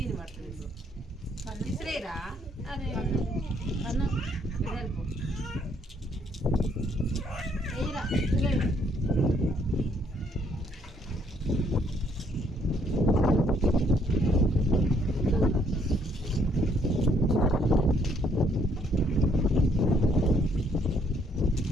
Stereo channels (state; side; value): normal; both; correlation 0.68